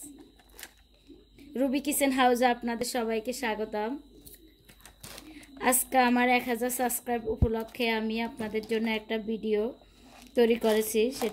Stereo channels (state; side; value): identical; both; correlation 1.00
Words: Ruby kitchen হাউসে আপনাদের সবাইকে স্বাগতম। আজকে আমার 1000 সাবস্ক্রাইব উপলক্ষে আমি আপনাদের জন্য একটা ভিডিও তৈরি করেছি।